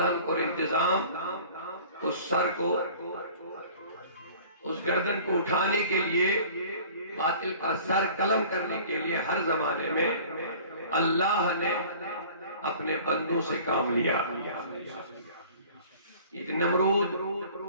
کو انتظام اس سر کو اس گردن کو اٹھانے کے لیے باطل کا سر قلم کرنے کے لیے ہر زمانے میں اللہ نے اپنے بندوں سے کام لیا یہ نمرود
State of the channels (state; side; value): inverted; both; correlation -0.47